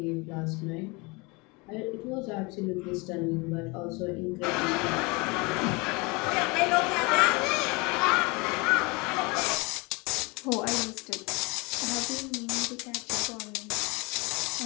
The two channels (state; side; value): quieter; right; 27.5 dB